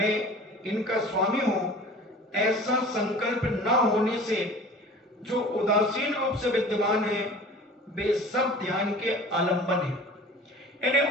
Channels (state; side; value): normal; both; correlation 0.42